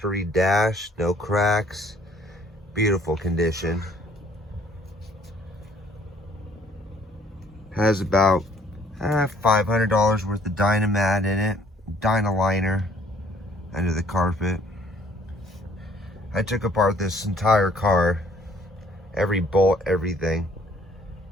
dash, no cracks, beautiful condition. Has about $500 worth of Dynamat in it, Dynaliner under the carpet. I took apart this entire car, every bolt, everything.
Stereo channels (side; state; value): both; normal; correlation 0.60